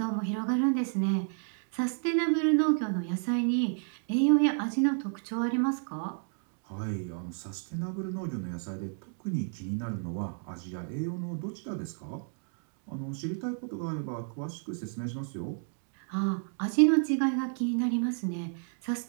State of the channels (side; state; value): left; silent; 57 dB below the other